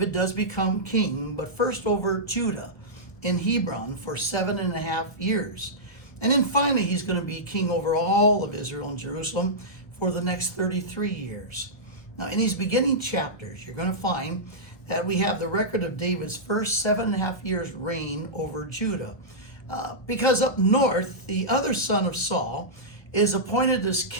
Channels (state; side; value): late; right; 1.3 ms